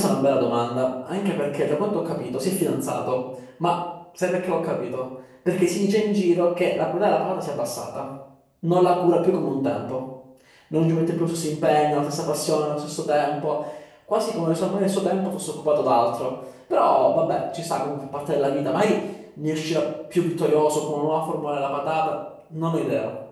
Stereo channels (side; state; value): both; identical; correlation 1.00